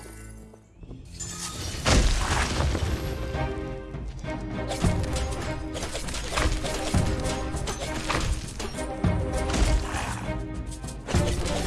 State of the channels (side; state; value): both; identical; correlation 1.00